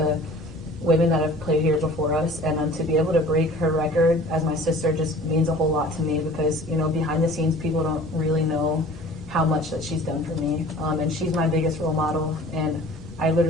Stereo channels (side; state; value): both; normal; correlation 0.46